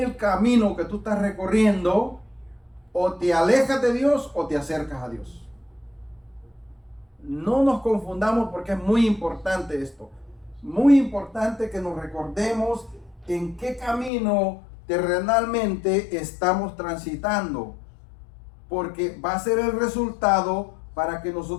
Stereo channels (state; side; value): drops out; right; at 14.1 s